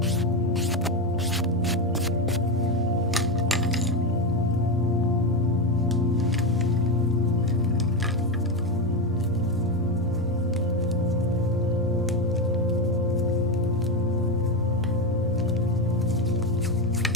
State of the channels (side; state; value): both; normal; correlation 0.13